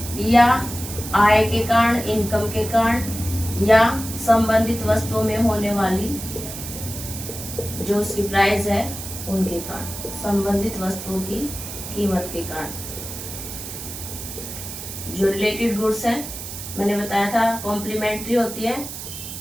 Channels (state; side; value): noise; right; hiss, 9 dB below the sound